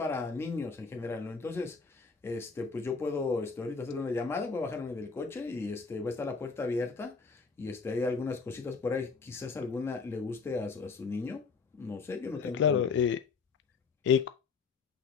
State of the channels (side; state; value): right; quieter; 4.9 dB